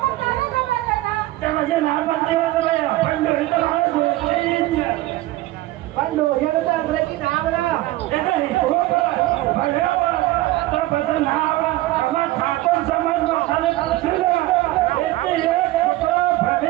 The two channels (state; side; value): quieter; left; 17.3 dB